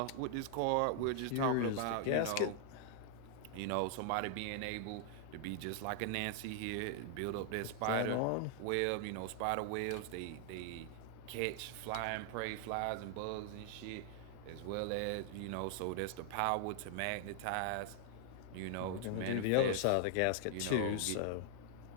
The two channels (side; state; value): both; different; correlation 0.00